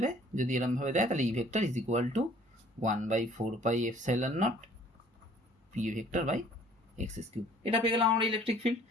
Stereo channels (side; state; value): both; normal; correlation 0.55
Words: যদি এরমভাবে দেয় তাহলে E vector is equal to 1/4πε0 p vector by x³। এটা পেয়ে গেলাম আমরা ইলেকট্রিক ফিল্ড।